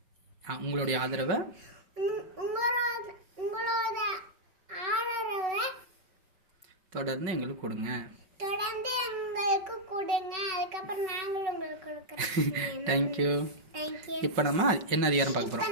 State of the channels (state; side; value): late; left; 5.3 ms